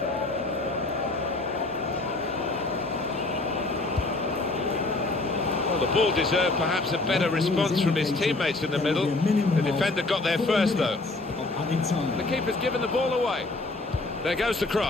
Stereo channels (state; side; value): quieter; right; 3.1 dB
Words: Well, the ball deserved perhaps a better response from his teammates in the middle. The defender got there first, though. The keeper's given the ball away. There goes the